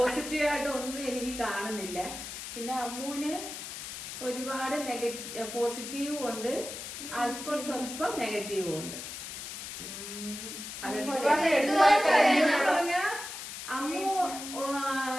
ഒന്നും എനിക്ക് കാണുന്നില്ല. പിന്നെ അമ്മൂന് ഒരുപാട് പോസിറ്റീവും ഉണ്ട്, അല്പം സ്വല്പം നെഗറ്റീവും ഉണ്ട്. അമ്മു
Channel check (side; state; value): left; noise; hiss, 8 dB below the sound